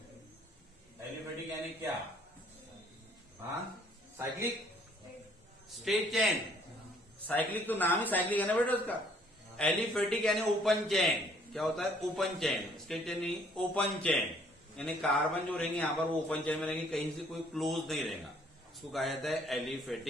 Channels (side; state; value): both; normal; correlation 0.61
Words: एलिफेटिक यानी क्या? हाँ, साइक्लिक स्ट्रेट चेन। साइक्लिक तो नाम ही साइक्लिक है ना बेटा उसका। एलिफेटिक यानी ओपन चेन। क्या होता है? Open chain. स्ट्रेट चेन नहीं, ओपन चेन, यानी कार्बन जो रहेंगे यहाँ पर वो ओपन चेन में रहेंगे, कहीं से कोई क्लोज नहीं रहेगा, इसको कहा जाता है